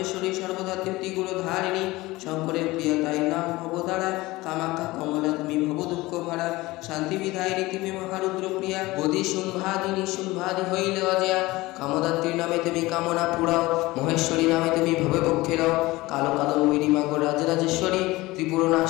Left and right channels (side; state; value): right; quieter; 20.1 dB